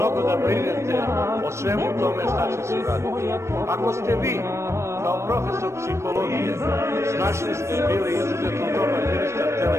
da brinete o svemu tome šta će se raditi. Ako ste vi, kao profesor psihologije, snašli ste bili izuzetno dobar ministar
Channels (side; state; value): left; late; 0.13 ms